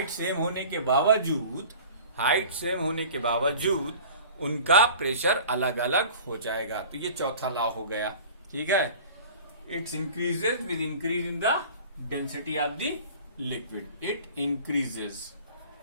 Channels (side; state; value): both; inverted; correlation -0.43